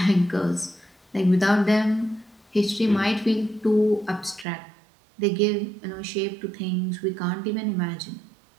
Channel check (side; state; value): left; drops out; at 4.5 s